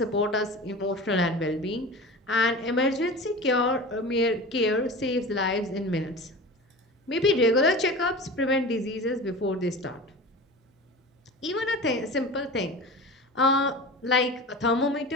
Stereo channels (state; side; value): normal; both; correlation 0.33